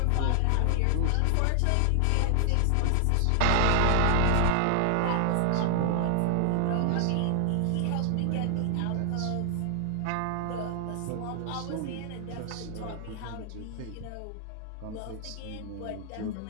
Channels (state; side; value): different; both; correlation 0.00